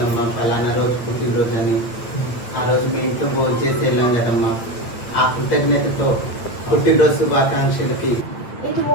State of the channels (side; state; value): right; late; 8.4 ms